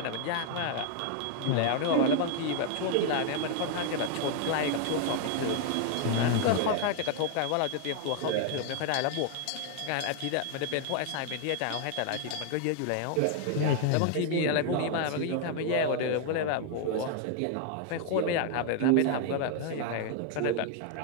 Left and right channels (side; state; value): both; different; correlation 0.00